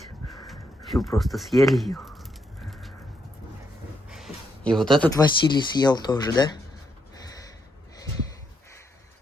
Всю просто съели ее. И вот этот Василий съел тоже, да?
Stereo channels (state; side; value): normal; both; correlation 0.78